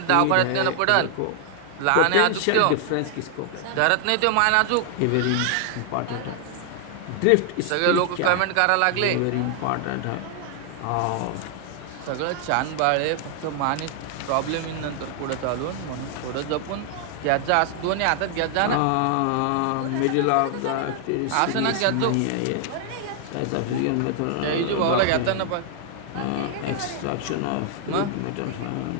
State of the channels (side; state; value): both; different; correlation 0.00